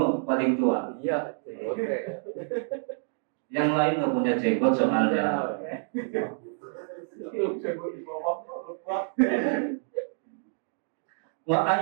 paling tua. Iya, oke. Yang lain nggak punya jenggot soalnya. Wa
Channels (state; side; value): silent; left; digital silence